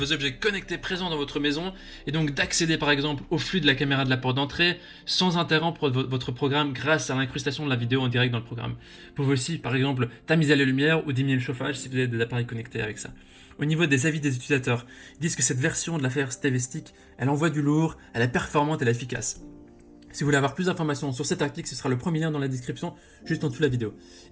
objets connectés présents dans votre maison et donc d'accéder par exemple au flux de la caméra de la porte d'entrée sans interrompre votre programme grâce à l'incrustation de la vidéo en direct dans le programme. Vous pouvez aussi par exemple tamiser les lumières ou diminuer le chauffage si vous avez des appareils connectés avec ça. Au niveau des avis des utilisateurs, ils disent que cette version de la Fire TV Stick, elle envoie du lourd, elle est performante et elle est efficace. Si vous voulez avoir plus d'informations sur cet article, ce sera le premier lien dans la description, juste en dessous de la vidéo.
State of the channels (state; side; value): identical; both; correlation 1.00